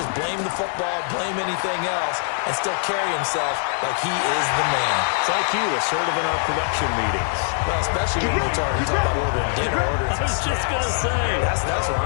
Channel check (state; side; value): silent; right; 64 dB below the other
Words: blame the football, blame anything else, and still carry himself like he is the man. It's like you, assertive in our production meetings. Well, especially when we're talking about ordering dinner, ordering some snacks. I was just going to say. That's where